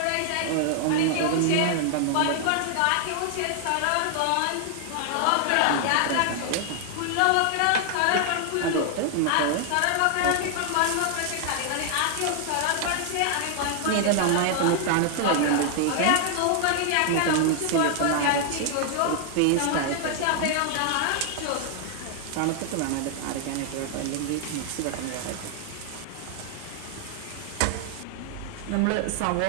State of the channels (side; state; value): both; different; correlation 0.00